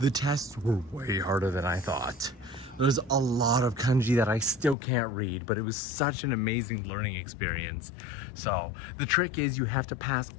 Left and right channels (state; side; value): drops out; right; at 4.8 s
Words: tests were way harder than I thought. There's a lot of kanji that I still can't read, but it was such an amazing learning experience. So the trick is you have to pass